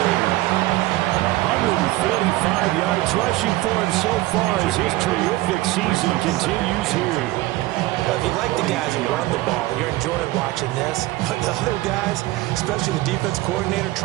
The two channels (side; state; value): left; quieter; 18.4 dB